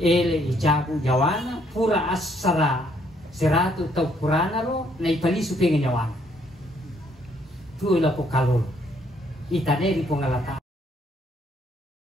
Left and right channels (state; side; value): normal; both; correlation 0.68